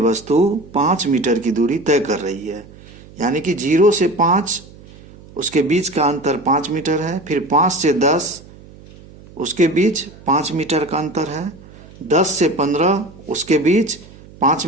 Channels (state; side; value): noise; right; hum, 21 dB below the sound